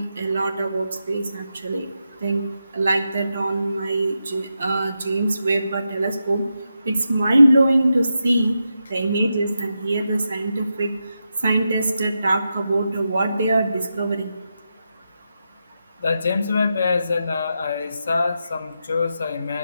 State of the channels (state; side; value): inverted; both; correlation -0.87